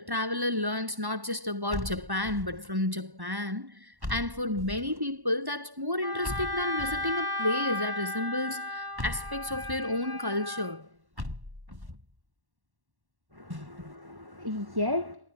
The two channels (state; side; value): late; left; 1.1 ms